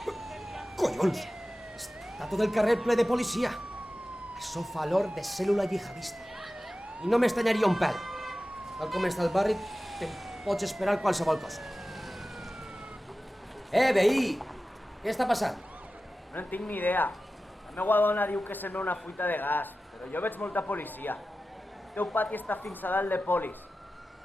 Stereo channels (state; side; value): normal; both; correlation 0.94